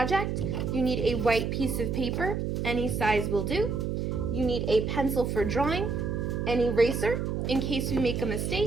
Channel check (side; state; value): right; noise; hum, 1 dB below the sound